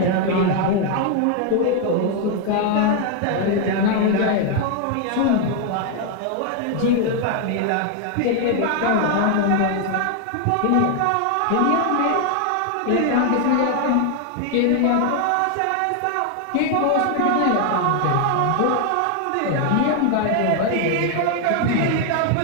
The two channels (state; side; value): different; both; correlation 0.00